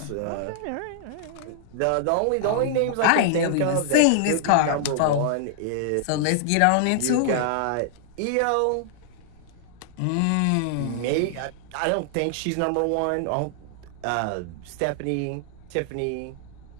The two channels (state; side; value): different; both; correlation -0.01